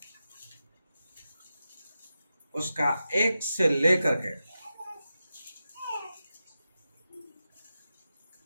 उसका 1 से लेकर के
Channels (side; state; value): both; inverted; correlation -0.91